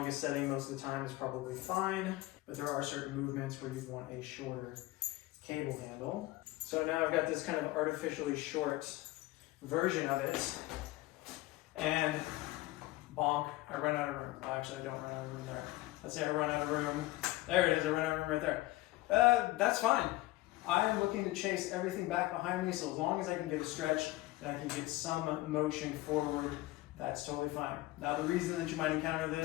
setting most of the time is probably fine, but there are certain movements where you'd want a shorter cable handle. So now I've got this kind of artificially short version of it, and bonk, I run out of room. Well, actually, I don't run out of room there. Let's say I run out of room. There it is, I run out of room right there. That's fine. I am looking to chase everything back behind me, so as long as I can get a stretch and I can get some motion forward, that's totally fine. Now, the reason that you might encounter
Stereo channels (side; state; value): right; quieter; 18.5 dB